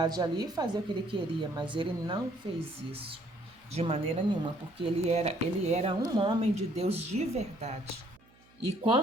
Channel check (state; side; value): noise; right; hum, 30 dB below the sound